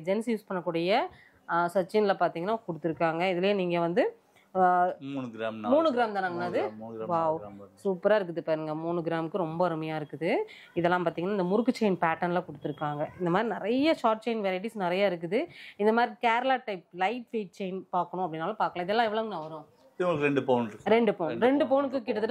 ஜென்ஸ் யூஸ் பண்ணக்கூடிய சச்சினில் பார்த்தீங்கன்னா கொடுத்துருக்காங்க. இதுலேயே நீங்கள் வந்து 3 கிராம் தானாங்கண்ணா? அது வாவ் சூப்பராக இருக்குது பாருங்க. 3 கிராமுக்கு ரொம்ப அருமையாக இருக்குது. இதெல்லாம் பார்த்தீங்கன்னா இந்த முறுக்கு செயின் பேட்டர்னில் கொடுத்துருக்காங்க. இந்த மாதிரி நிறைய ஷார்ட் செயின் வெரைட்டிஸ் நிறைய இருக்குது. இந்த மாதிரி Kerala type light weight chain பார்க்கணும் அப்படின்னாலும் பார்க்கலாம். இதெல்லாம் எவ்வளோங்கண்ணா வரும்? 2 பவுன். 2 பவுன். 2 பவுனுக்கு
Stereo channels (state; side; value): identical; both; correlation 1.00